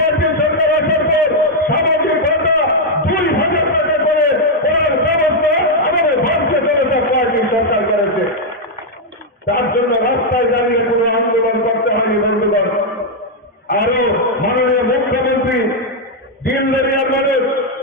সরকার আসার পর সামাজিক ভাতা 2,000 টাকা করে করার ব্যবস্থা আমাদের ভারতীয় জনতা পার্টির সরকার করেছে। তার জন্য রাস্তায় দাঁড়িয়ে কোনো আন্দোলন করতে হয়নি বন্ধুগণ। আরো মাননীয় মুখ্যমন্ত্রী দিন দরিয়ার মানুষ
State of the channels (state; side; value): normal; both; correlation -0.01